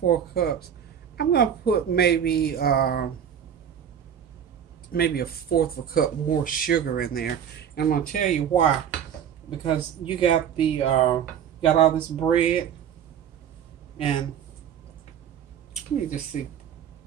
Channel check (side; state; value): left; quieter; 8.8 dB